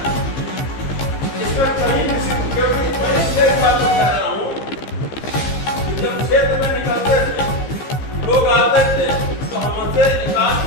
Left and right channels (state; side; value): late; right; 15 ms